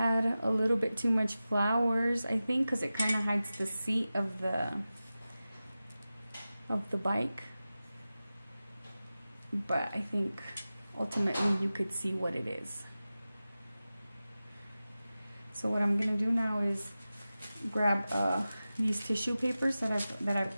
a little bit too much flowers, I think, because it kind of hides the seat of the bike. But I think ultimately you could see what it is. So what I'm gonna do now is grab these tissue papers that I've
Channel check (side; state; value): both; inverted; correlation -0.95